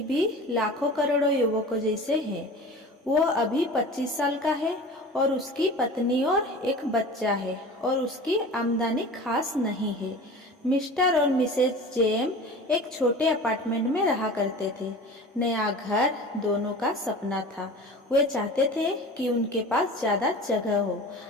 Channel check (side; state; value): both; normal; correlation 0.37